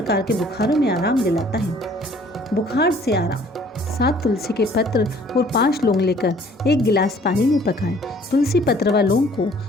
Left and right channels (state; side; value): normal; both; correlation 0.56